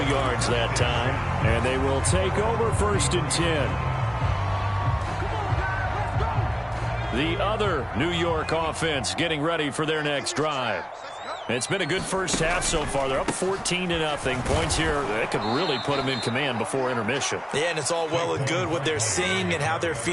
yards that time. And they will take over first and 10. The other New York offense getting ready for their next drive. It's been a good first half so far. They're up 14-0. Points here, that could really put them in command before intermission. Yeah, and it's all well and good what they're seeing and how they're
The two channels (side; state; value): both; identical; correlation 1.00